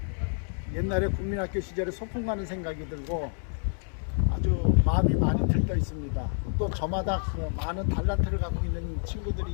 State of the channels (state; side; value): silent; right; 56 dB below the other